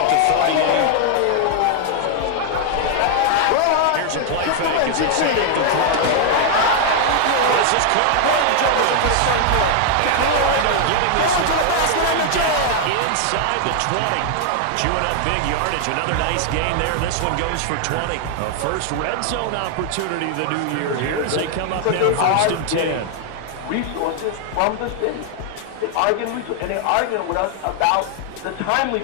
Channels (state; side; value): different; both; correlation 0.00